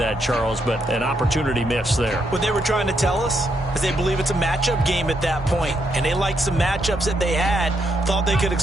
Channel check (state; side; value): normal; both; correlation 0.78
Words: Charles, but an opportunity missed there. What they were trying to tell us is they believe it's a matchup game at that point. And they liked some matchups that they had, thought they could